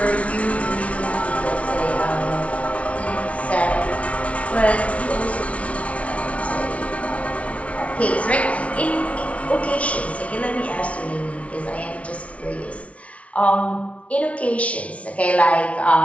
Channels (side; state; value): right; late; 0.064 ms